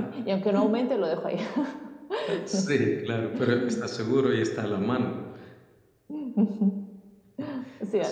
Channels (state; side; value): identical; both; correlation 1.00